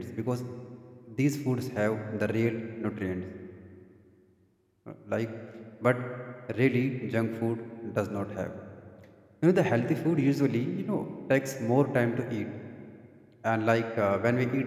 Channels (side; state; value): both; identical; correlation 1.00